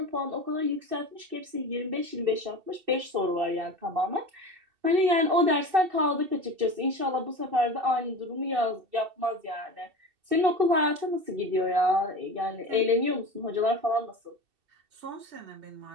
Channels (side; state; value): left; late; 2.7 ms